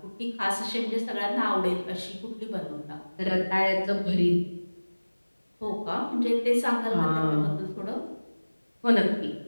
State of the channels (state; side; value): inverted; both; correlation -1.00